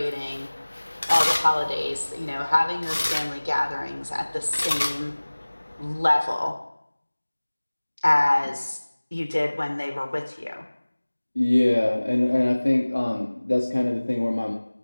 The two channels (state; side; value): inverted; both; correlation -1.00